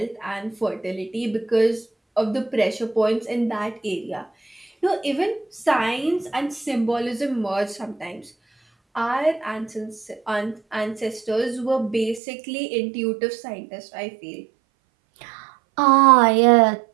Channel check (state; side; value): drops out; left; at 12.2 s